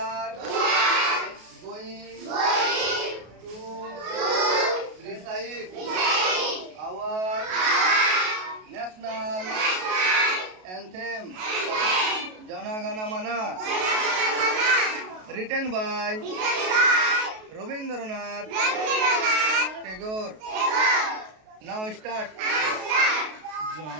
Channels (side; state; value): left; late; 33 ms